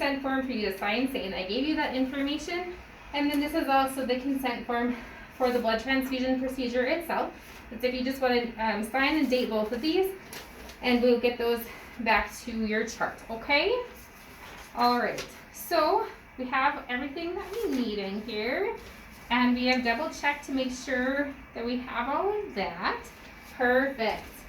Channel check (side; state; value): both; identical; correlation 1.00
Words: form for you to sign saying I gave you that information, and then this is also the consent form for the blood transfusion procedure itself. It's if you just want to sign and date both of these, and we'll get those back to your chart, okay? All right, so we have everything that we need in here, and we have double checked to make sure that we have all of that. Perfect.